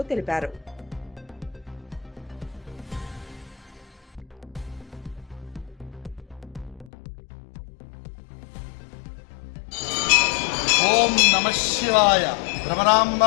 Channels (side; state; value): right; drops out; at 6.9 s